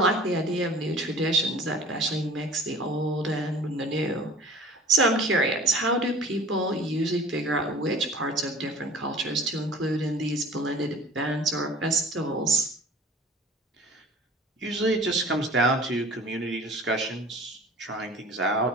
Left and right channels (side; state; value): both; normal; correlation 0.44